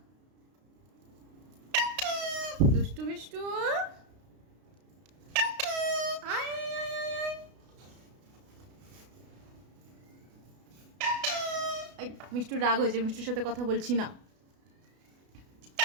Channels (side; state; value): left; late; 32 ms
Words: দুষ্টু মিষ্টু আয় আয় আয় আয় এই মিষ্টুর রাগ হয়েছে, মিষ্টুর সাথে কথা বলছি না।